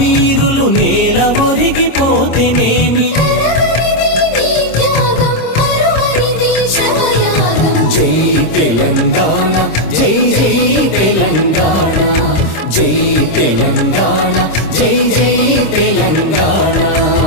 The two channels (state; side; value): late; right; 26 ms